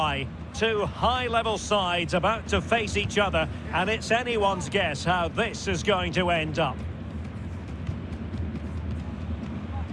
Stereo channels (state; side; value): identical; both; correlation 1.00